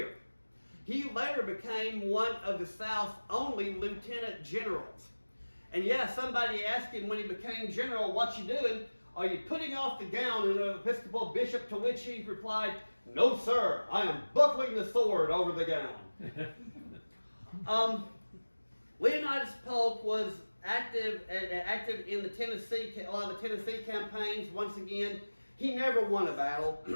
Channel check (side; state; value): both; inverted; correlation -1.00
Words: He later became one of the South's only lieutenant generals. And yeah, somebody asked him when he became general, "What you doing? Are you putting off the gown of an Episcopal bishop?" To which he replied, "No, sir, I am buckling the sword over the gown." Leonidas Polk was active in the a lot of the Tennessee campaigns. Once again, he never won a battle.